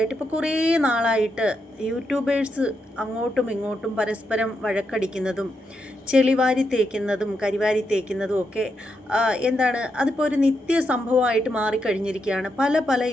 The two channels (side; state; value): both; normal; correlation 0.83